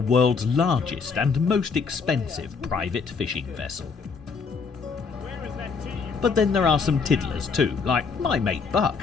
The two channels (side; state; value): right; quieter; 5.2 dB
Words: largest and most expensive private fishing vessel. But then there are some tiddlers too, like my mate Buck,